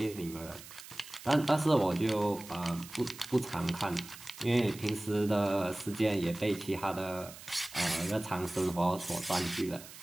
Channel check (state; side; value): noise; right; hiss, 16 dB below the sound